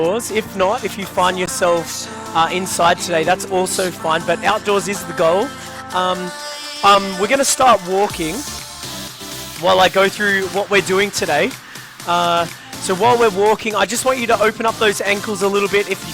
If not, if you find yourself inside today, that's also fine, but outdoors is the goal. We're going to start walking while I go through what we're doing today. So while we're walking, I just want you to open up those ankles a little bit if you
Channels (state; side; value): identical; both; correlation 1.00